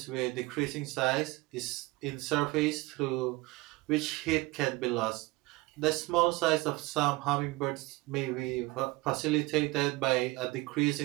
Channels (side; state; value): left; quieter; 22.1 dB